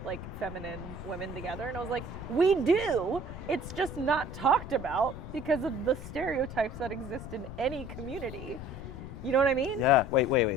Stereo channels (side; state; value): left; noise; rumble, 10 dB below the sound